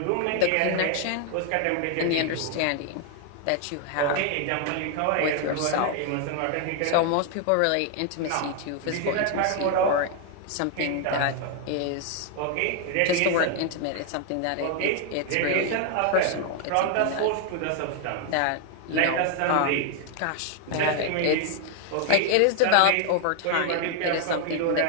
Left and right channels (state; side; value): different; both; correlation 0.00